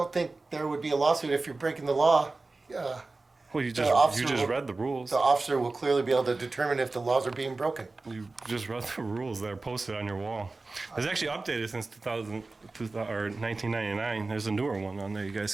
think there would be a lawsuit if you're breaking the law. Well, you officer just will- read the rules. The officer will clearly be able to determine if the laws are being broken. You just read the rules that are posted on your wall. It's actually updated since 1999. There's a newer one on there. You guys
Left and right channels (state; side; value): quieter; left; 3.5 dB